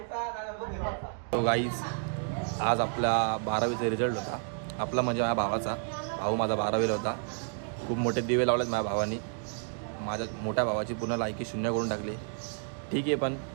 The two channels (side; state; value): left; silent; 55 dB below the other